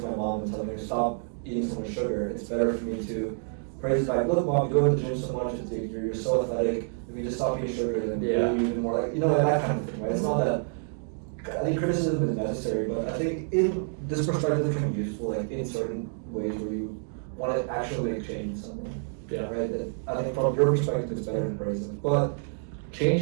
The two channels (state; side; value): silent; left; 59 dB below the other